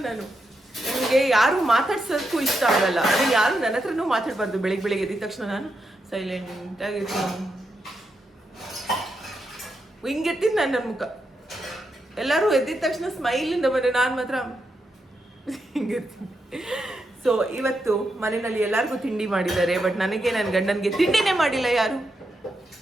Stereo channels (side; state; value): both; normal; correlation 0.84